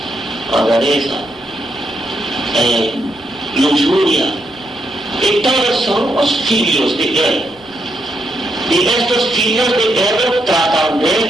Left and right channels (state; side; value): normal; both; correlation 0.80